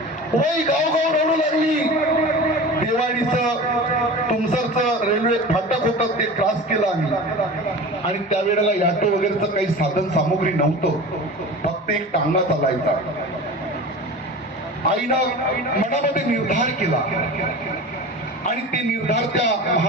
वय गाव रडू लागली. देवाडीचं तुमसरचं रेल्वे फाटक होतं ते क्रॉस केलं आम्ही, आणि त्यावेळेला ऑटो वगैरेचं काही साधन सामुग्री नव्हतं, फक्त एक टांगा चालायचा. आईनं मनामध्ये निर्धार केला आणि ते निर्धार त्या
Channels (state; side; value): normal; both; correlation 0.34